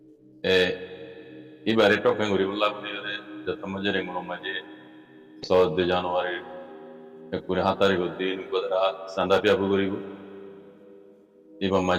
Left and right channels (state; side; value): identical; both; correlation 1.00